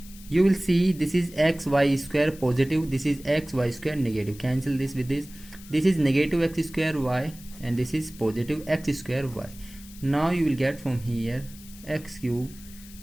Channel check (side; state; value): left; noise; hiss, 20 dB below the sound